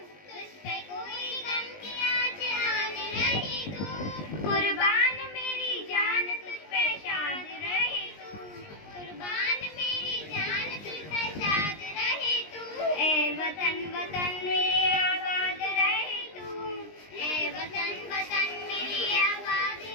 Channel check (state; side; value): late; right; 20 ms